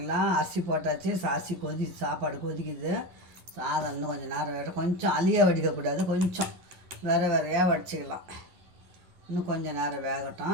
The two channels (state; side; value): late; left; 11 ms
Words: அரிசி போட்டாச்சு. அரிசி சாப்பாடு கொதிக்குது. சாதம் இன்னும் கொஞ்சம் நேரம் வேணும். கொஞ்சம் அழியாக வடிக்கக்கூடாது, கொஞ்சம் வேறையாக வடிச்சிக்கலாம். இன்னும் கொஞ்சம் நேரம்